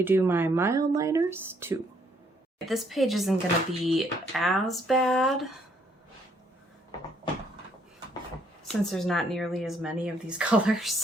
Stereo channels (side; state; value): both; normal; correlation 0.68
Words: do my Mildliners too. This page isn't going to be as bad since there's not nearly as many of these